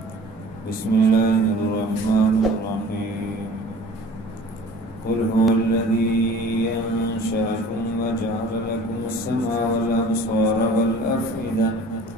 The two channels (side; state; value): both; normal; correlation 0.46